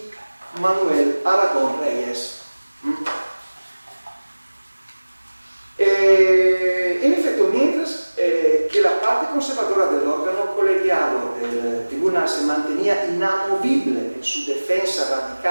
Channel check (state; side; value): inverted; both; correlation -1.00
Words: Manuel Aragón Reyes. En efecto, mientras que la parte conservadora del órgano colegiado del tribunal se mantenía inamovible en su defensa